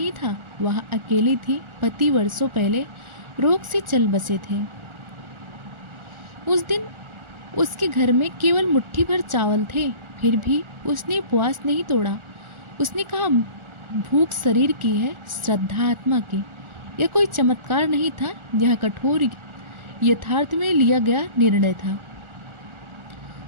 था। वह अकेली थी। पति वर्षों पहले रोग से चल बसे थे। उस दिन उसके घर में केवल मुट्ठी भर चावल थे, फिर भी उसने उपवास नहीं तोड़ा। उसने कहा, भूख शरीर की है, श्रद्धा आत्मा की। यह कोई चमत्कार नहीं था, यह कठोर यथार्थ में लिया गया निर्णय था।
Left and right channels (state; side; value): late; left; 1.4 ms